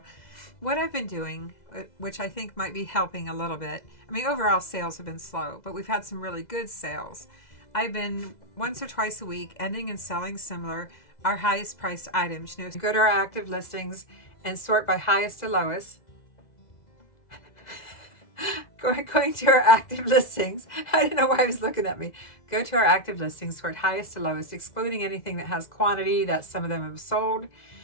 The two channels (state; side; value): late; right; 2.0 ms